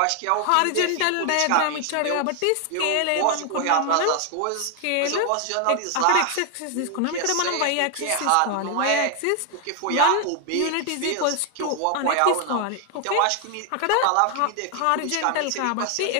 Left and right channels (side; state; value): both; different; correlation 0.00